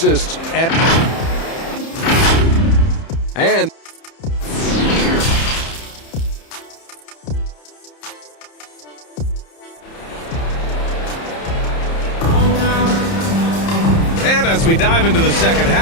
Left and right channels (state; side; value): late; right; 30 ms